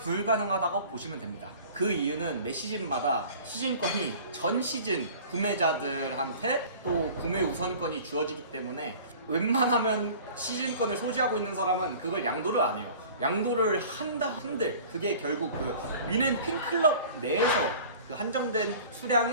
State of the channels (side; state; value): both; inverted; correlation -0.44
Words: 보시면 됩니다. 그 이유는 매 시즌마다 시즌권이 전 시즌 구매자들한테 또 구매 우선권이 주어지기 때문에 웬만하면 시즌권을 소지하고 있는 사람은 그걸 양도를 안 해요. 양도를 한다 한들 그게 결국 그 뮌헨 팬클럽 내에서 그 한정된